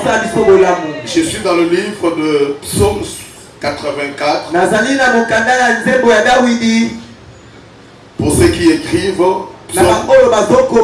Je suis dans le livre de Psaume 84. Pour ceux qui écrivent,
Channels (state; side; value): identical; both; correlation 1.00